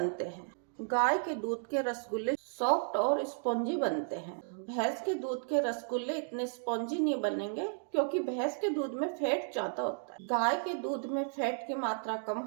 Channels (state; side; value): silent; left; digital silence